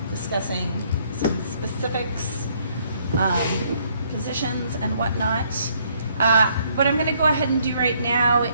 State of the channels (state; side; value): inverted; both; correlation -0.67